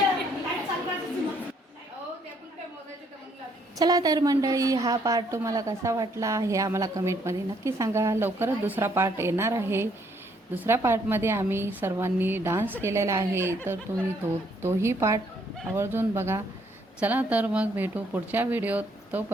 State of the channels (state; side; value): normal; both; correlation 0.68